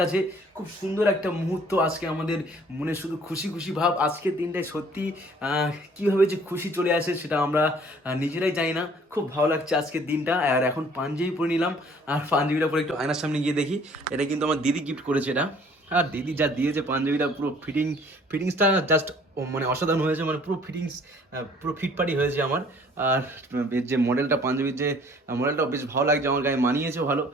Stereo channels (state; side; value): normal; both; correlation 0.56